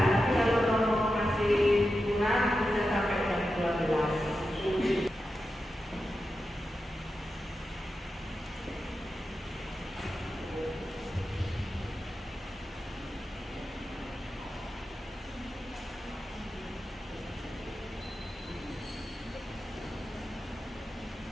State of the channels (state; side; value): normal; both; correlation 0.90